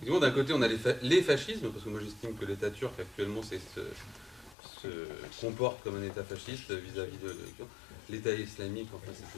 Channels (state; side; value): drops out; right; at 4.5 s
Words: d'un côté, on a les fascismes, parce que moi j'estime que l'État turc actuellement se comporte comme un État fasciste vis-à-vis de l'État islamique. Enfin, cette